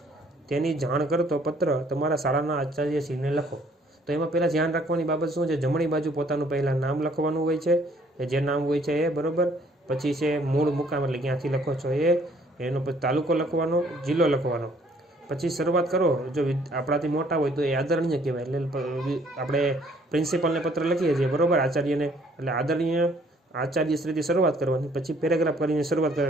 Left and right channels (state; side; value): normal; both; correlation 0.61